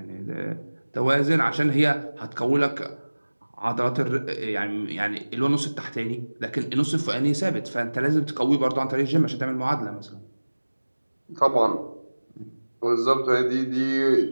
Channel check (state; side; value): inverted; both; correlation -1.00